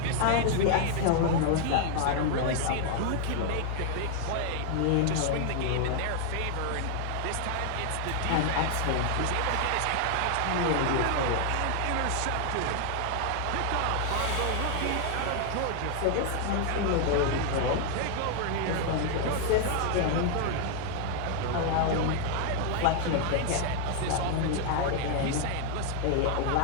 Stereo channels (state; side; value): different; both; correlation 0.00